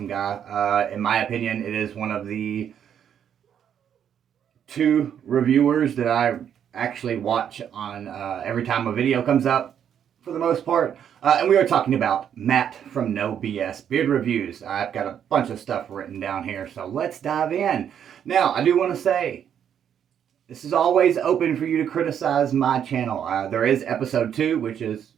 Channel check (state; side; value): quieter; left; 8.9 dB